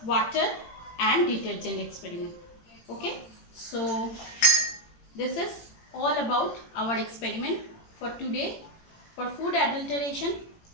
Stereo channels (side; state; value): right; late; 18 ms